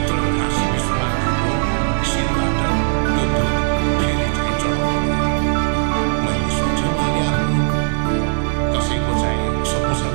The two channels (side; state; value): left; silent; digital silence